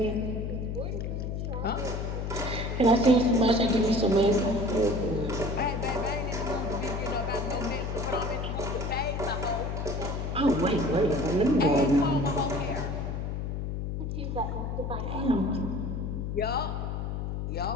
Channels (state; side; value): noise; left; hum, 3 dB below the sound